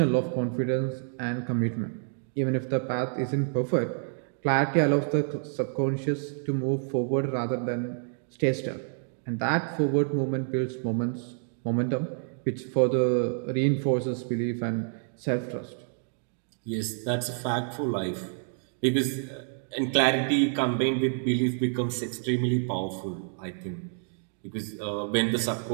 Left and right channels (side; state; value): left; silent; digital silence